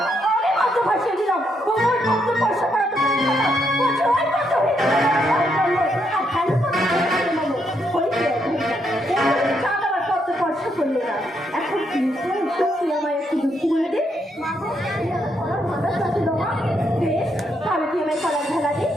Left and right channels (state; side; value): normal; both; correlation 0.77